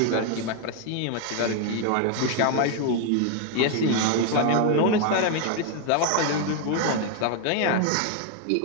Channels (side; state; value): both; different; correlation 0.01